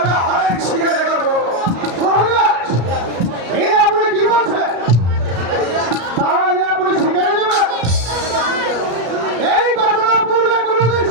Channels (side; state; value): left; late; 34 ms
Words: অনেক শিকারে করবো। মহারাজ, এই আপনি কি বলছেন? তাহলে আপনি শিকারে যাবেন? এই ঘটনা পূর্বে কোনোদিন